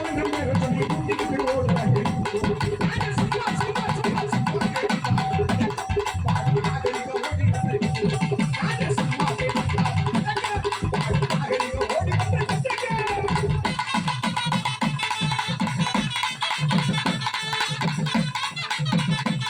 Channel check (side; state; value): both; identical; correlation 1.00